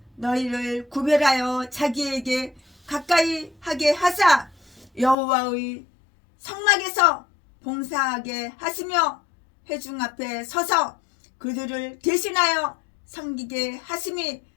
너희를 구별하여 자기에게 가까이 하게 하사 여호와의 성막에서 봉사하게 하시며 회중 앞에 서서 그들을 대신하여 섬기게 하심이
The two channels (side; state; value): right; drops out; at 5.2 s